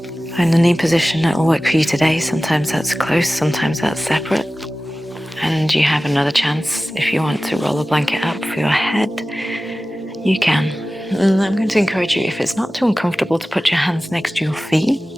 Find a knee position that will work for you today. Sometimes that's close, sometimes that's separate. And you have another chance if you want to roll a blanket up for your head, you can. And I'm going to encourage you, if it's not too uncomfortable, to put your hands next to your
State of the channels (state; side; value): normal; both; correlation 0.96